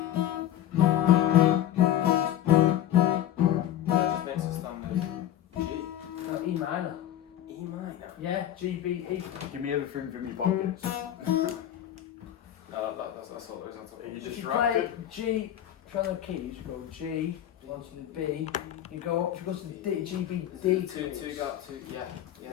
Just makes a standard G. No, E minor. E minor. Yeah, G, B, E. Give me everything from your pockets. That's all there is. That's all. Are you If you distracted? play G, try the keys, you go G, onto the B, you go to the D, G, B, D. Two, yeah.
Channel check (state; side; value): quieter; right; 11.7 dB